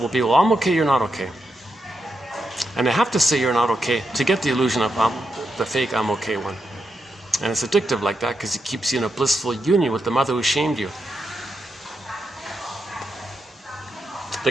be, well, I'm okay, you're not okay. And they have to say you're not okay to get the illusion of the fake I'm okay one. And it's addictive like that because it keeps you in a blissful union with the mother who shamed you. The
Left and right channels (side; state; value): both; normal; correlation 0.84